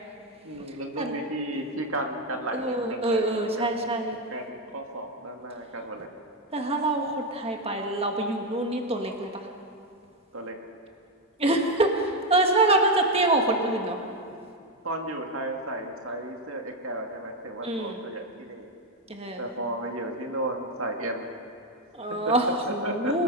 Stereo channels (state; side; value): normal; both; correlation 0.07